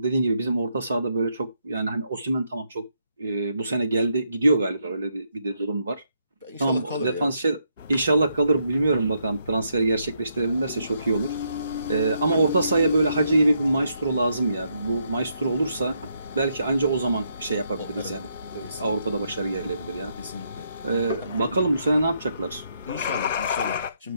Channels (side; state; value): both; inverted; correlation -0.77